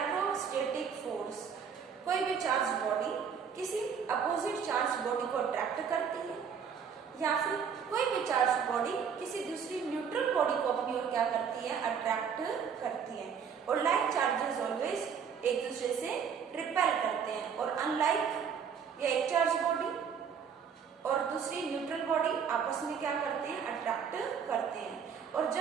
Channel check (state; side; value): quieter; left; 7.0 dB